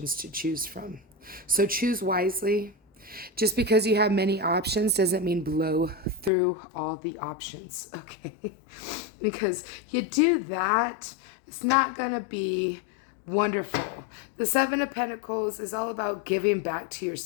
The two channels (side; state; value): right; drops out; at 6.3 s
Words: to choose from. So choose wisely. Just because you have many options doesn't mean blow through all the options, okay? Because you do that, it's not going to be wonderful. The Seven of Pentacles is all about giving back to